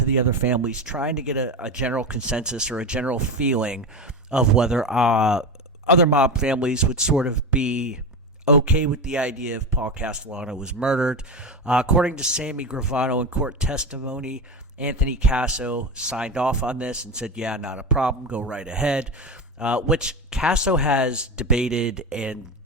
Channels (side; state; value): both; normal; correlation 0.21